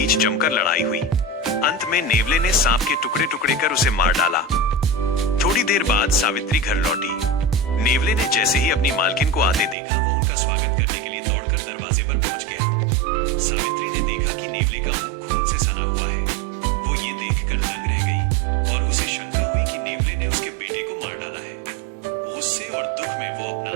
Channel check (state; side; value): drops out; left; at 9.8 s